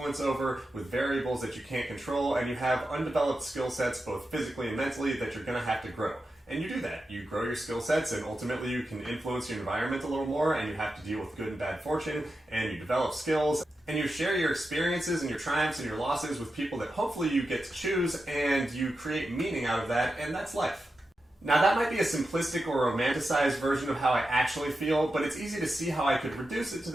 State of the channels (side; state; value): both; normal; correlation 0.90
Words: over, with variables that you can't control, and you have undeveloped skill sets both physically and mentally that you're going to have to grow. And you do that. You grow your skill sets, and ultimately you can influence your environment a little more, and you have to deal with good and bad fortune, and you develop skills, and you share your experiences and your triumphs and your losses with people that hopefully you get to choose, and you create meaning out of that, and that's life. Now that might be a simplistic or romanticized version of how I actually feel, but it's easy to see how I could reduce it to